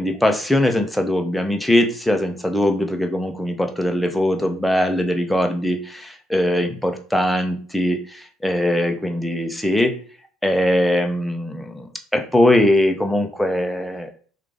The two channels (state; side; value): normal; both; correlation 0.86